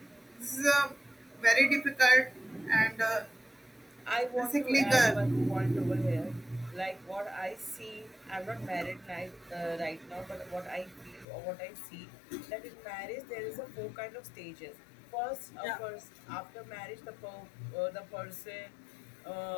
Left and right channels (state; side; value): drops out; right; at 11.2 s